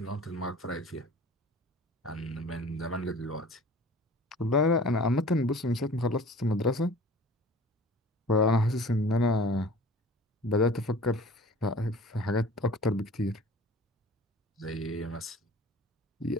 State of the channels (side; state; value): both; normal; correlation 0.44